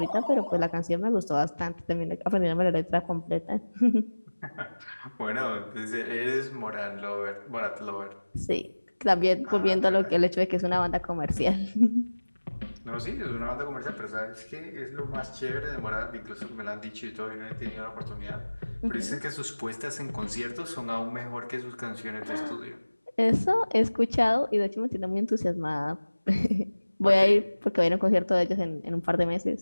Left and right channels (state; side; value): inverted; both; correlation -1.00